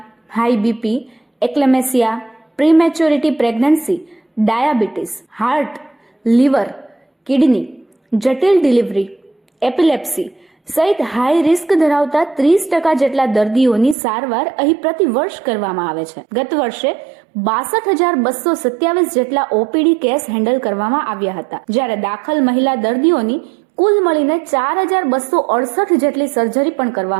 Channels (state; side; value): drops out; left; at 14.0 s